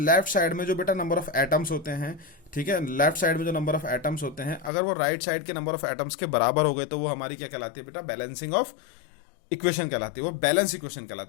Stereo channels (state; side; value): drops out; right; at 4.7 s